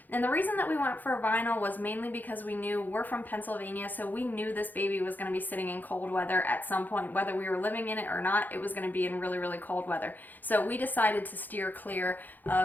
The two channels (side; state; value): right; late; 0.085 ms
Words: And the reason that we went for vinyl was mainly because we knew we're from Pennsylvania, so we knew this baby was going to be sitting in cold weather at some point. Whether we were living in it or not, it was going to be in really, really cold weather. So we decided to steer clear